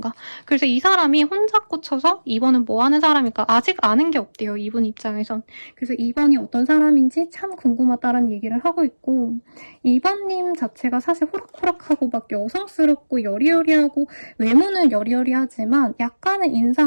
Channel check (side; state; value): both; inverted; correlation -1.00